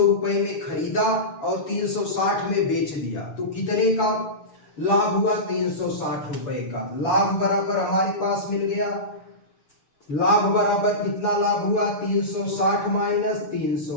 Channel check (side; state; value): right; late; 6.9 ms